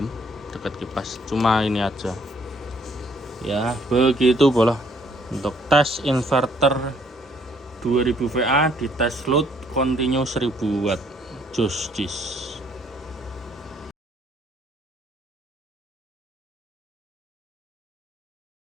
dekat kipas. Cuma ini aja. Ya, begitu boleh. Untuk tes inverter 2000 VA di tes load continue 1000 watt. Jis.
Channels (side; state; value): both; normal; correlation 0.64